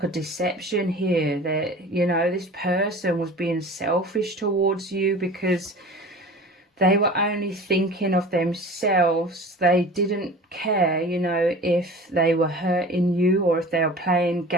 a deception here that, you know, this person was being selfish towards you because they were only thinking of themselves. They didn't care, you know, if they were hurting you or if they were playing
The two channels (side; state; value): both; normal; correlation 0.40